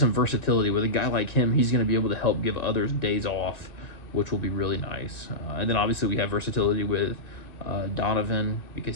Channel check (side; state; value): right; late; 1.9 ms